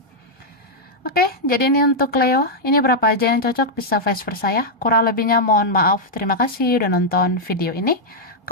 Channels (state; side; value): normal; both; correlation -0.04